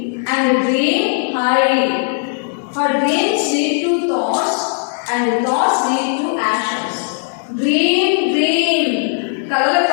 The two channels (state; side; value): silent; right; 62 dB below the other